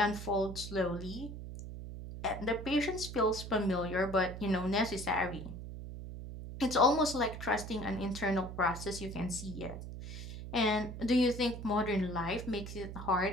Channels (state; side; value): noise; right; hum, 9 dB below the sound